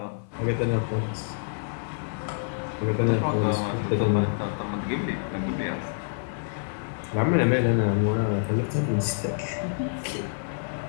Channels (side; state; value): right; silent; 60 dB below the other